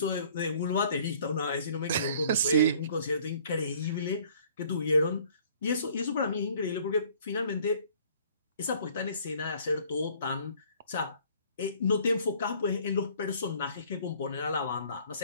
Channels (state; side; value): inverted; both; correlation -0.56